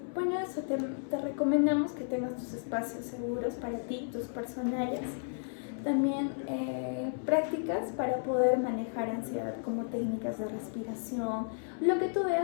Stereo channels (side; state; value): right; silent; 56 dB below the other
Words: bueno, eso te recomendamos que tengas tus espacios seguros para ti, tus personales. También prácticas para poder manejar ansiedad, como técnicas de respiración, lo que tú